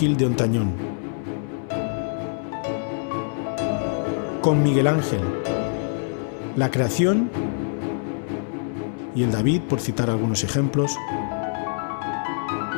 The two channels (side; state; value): right; silent; 62 dB below the other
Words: de Ontañón. Con Miguel Ángel, la Creación y el David, por citar algunos ejemplos.